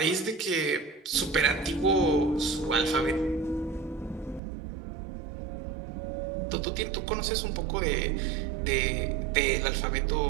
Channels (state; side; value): drops out; left; at 4.4 s